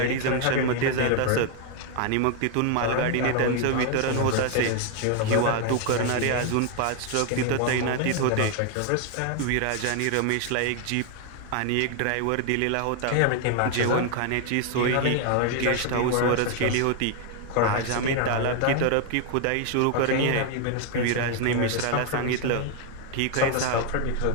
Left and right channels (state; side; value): different; both; correlation 0.01